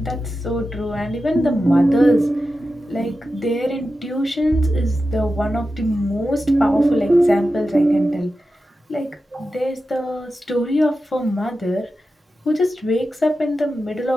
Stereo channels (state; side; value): normal; both; correlation 0.92